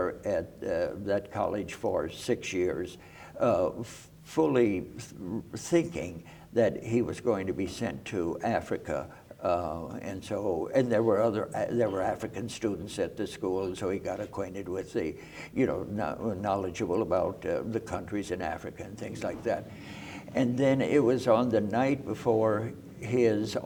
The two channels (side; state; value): both; identical; correlation 1.00